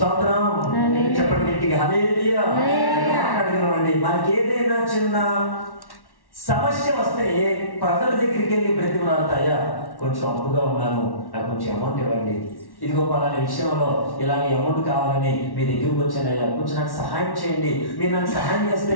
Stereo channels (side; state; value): right; late; 1.1 ms